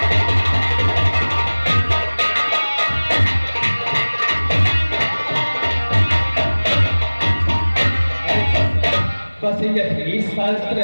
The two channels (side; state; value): both; inverted; correlation -1.00